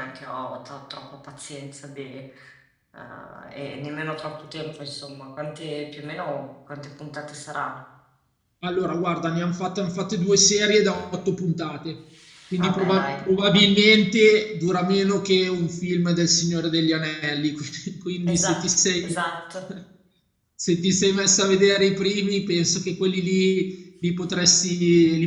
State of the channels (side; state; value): both; identical; correlation 1.00